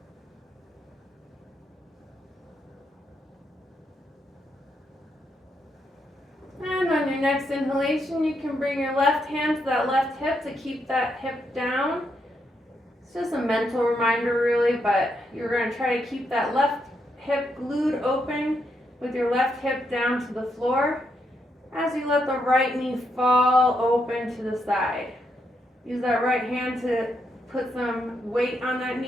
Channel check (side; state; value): both; normal; correlation 0.80